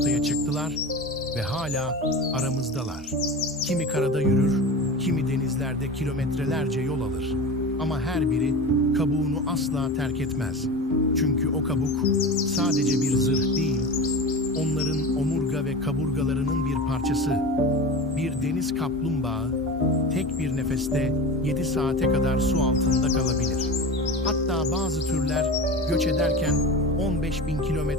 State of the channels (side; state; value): both; normal; correlation 0.29